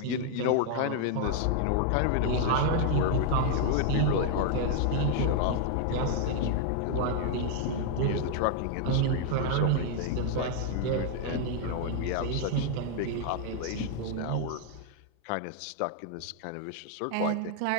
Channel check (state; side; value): different; both; correlation 0.00